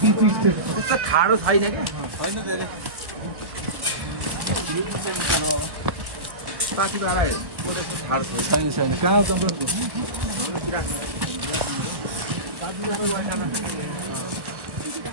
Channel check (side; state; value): left; late; 1.4 ms